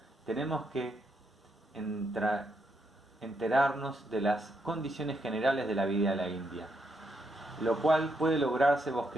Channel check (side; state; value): both; normal; correlation 0.78